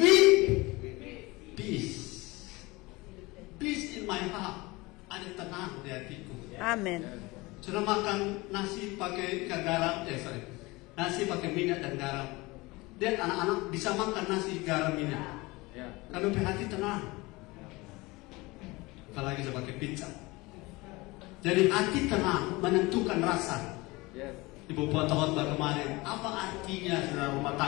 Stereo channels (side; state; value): right; quieter; 22.7 dB